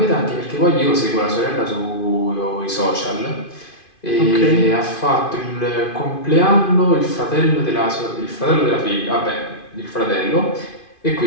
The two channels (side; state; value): right; late; 2.5 ms